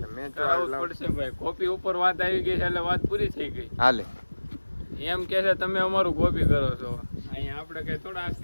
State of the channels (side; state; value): both; inverted; correlation -1.00